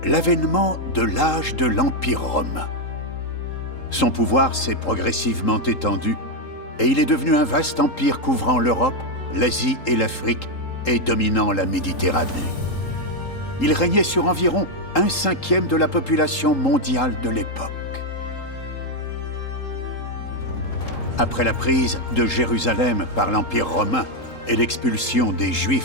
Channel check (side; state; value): right; late; 3.8 ms